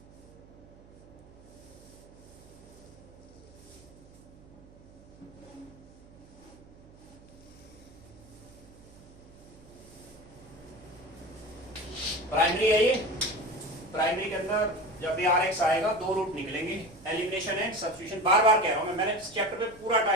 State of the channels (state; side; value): noise; right; hum, 22 dB below the sound